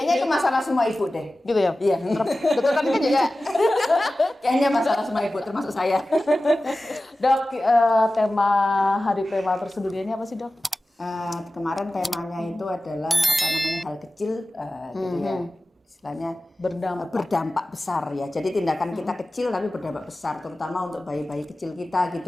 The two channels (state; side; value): normal; both; correlation 0.96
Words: itu masalah semua ibu deh. Gitu ya? Iya. Dokter Kartika juga. Kayaknya masalah semua ibu, termasuk saya. Dok, tema Hari Prematur Sedunia ini apa sih dok? Kemarin temanya itu adalah apa namanya hal kecil, gitu ya. Istilahnya berdampak besar ya. Jadi tindakan kita kecil tapi berdampak besar, terutama untuk bayi-bayi kecil kita